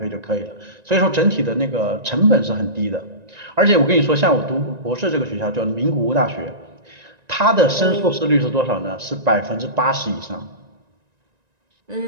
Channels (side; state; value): left; late; 1.9 ms